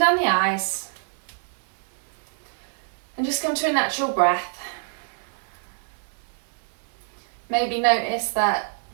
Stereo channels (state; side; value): silent; left; digital silence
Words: the eyes, and just come to a natural breath. Maybe notice that